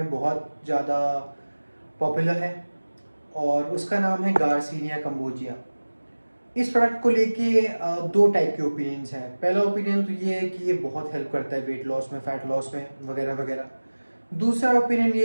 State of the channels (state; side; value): inverted; both; correlation -1.00